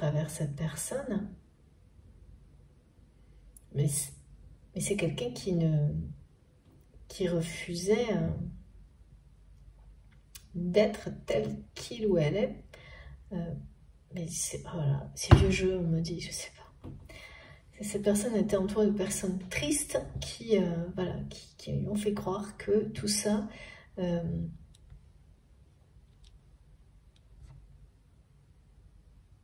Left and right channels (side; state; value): both; identical; correlation 1.00